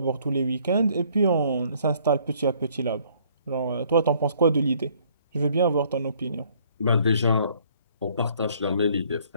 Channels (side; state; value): both; inverted; correlation -0.62